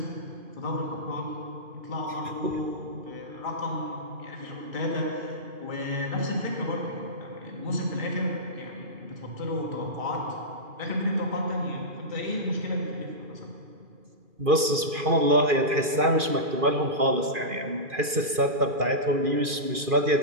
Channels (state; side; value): late; left; 2.4 ms